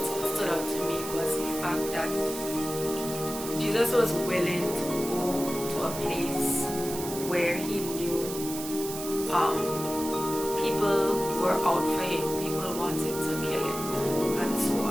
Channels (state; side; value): noise; right; hiss, 9 dB below the sound